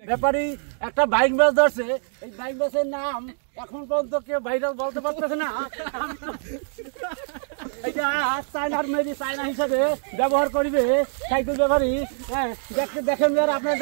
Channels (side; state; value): left; silent; digital silence